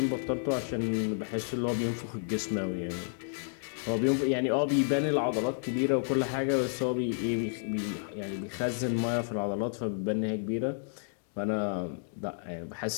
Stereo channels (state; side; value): silent; right; digital silence